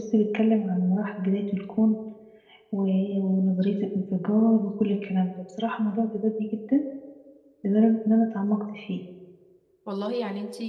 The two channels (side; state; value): both; identical; correlation 1.00